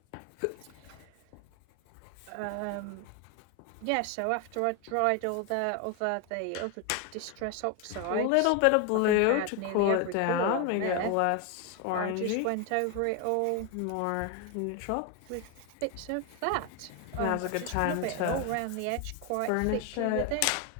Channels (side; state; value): both; different; correlation 0.01